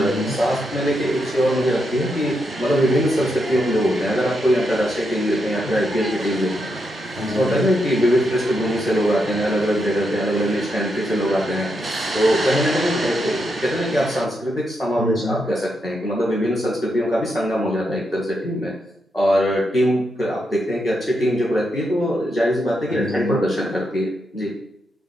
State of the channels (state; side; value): normal; both; correlation 0.82